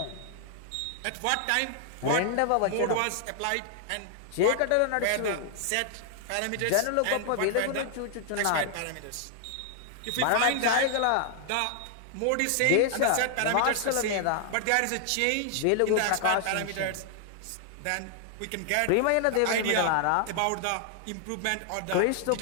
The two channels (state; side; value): different; both; correlation 0.00